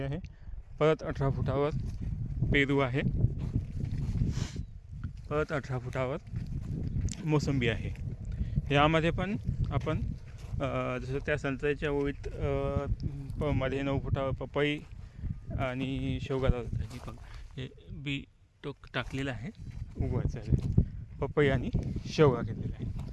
आहे. परत 18 फुटावर पेरू आहे. परत 18 फुटावर मोसंबी आहे. यामध्ये पण आपण जसं त्या संत्र्याच्या ओळीत मध्ये 9 फुटावर पपई आणि शेवगा लावतात. हे बी टाकलेलं आहे, उगवायचं आहे. पपई आणि शेवगा घेतलेला आहे.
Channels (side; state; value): both; identical; correlation 1.00